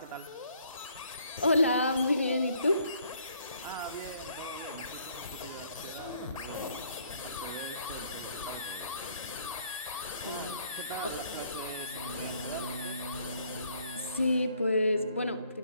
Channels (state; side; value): inverted; both; correlation -0.64